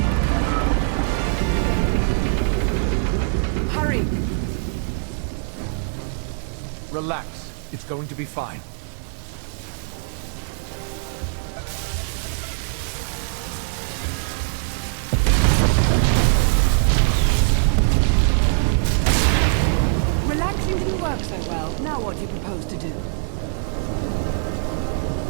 Hurry! Relax. It's going to be fine. Relaxing didn't work so well. Now what do you propose to do?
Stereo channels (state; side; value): silent; left; digital silence